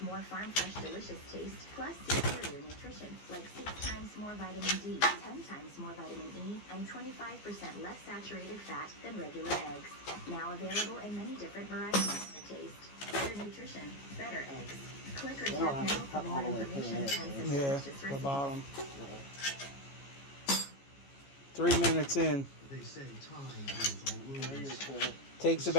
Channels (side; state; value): right; late; 14 ms